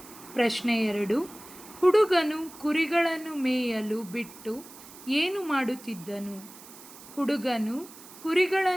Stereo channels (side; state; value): right; noise; hiss, 18 dB below the sound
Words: ಪ್ರಶ್ನೆ 2. ಹುಡುಗನು ಕುರಿಗಳನ್ನು ಮೇಯಲು ಬಿಟ್ಟು ಏನು ಮಾಡುತ್ತಿದ್ದನು? ಹುಡುಗನು